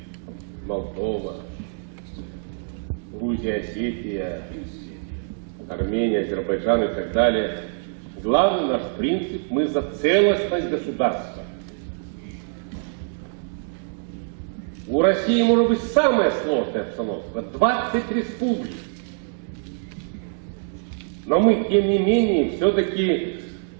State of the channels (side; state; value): left; silent; 62 dB below the other